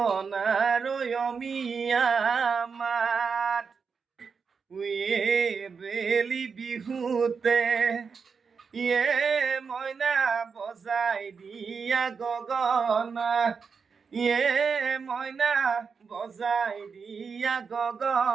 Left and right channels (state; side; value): quieter; left; 5.6 dB